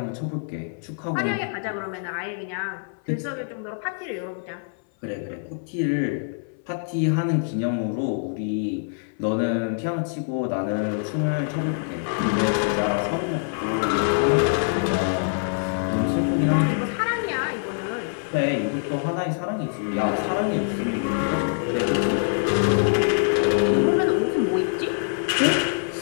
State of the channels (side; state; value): right; silent; 57 dB below the other